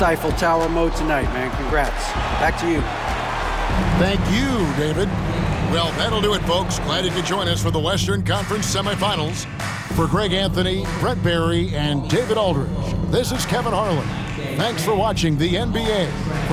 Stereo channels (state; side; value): identical; both; correlation 1.00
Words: Tower mode tonight, man. Congrats. Back to you. Thank you, David. Well, that'll do it, folks. Glad you could join us for the Western Conference Semifinals. For Greg Anthony, Brett Barry, and David Aldridge, this is Kevin Harlan. Thanks for watching the NBA,